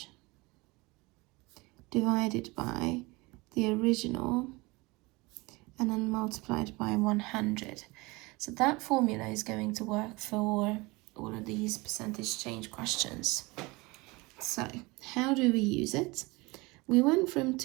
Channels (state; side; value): quieter; left; 24.0 dB